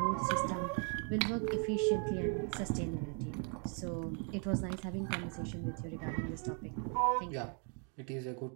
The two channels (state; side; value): quieter; left; 39.7 dB